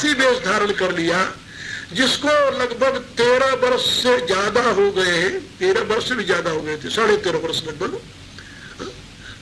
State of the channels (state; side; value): identical; both; correlation 1.00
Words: वेश धारण कर लिया, जिसको लगभग 13 वर्ष से ज्यादा हो गए हैं, 13 वर्ष से भी ज्यादा हो गए थे, 13.5 वर्ष लगभग,